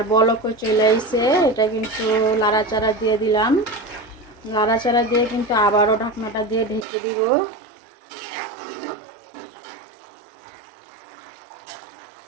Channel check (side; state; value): left; drops out; at 6.9 s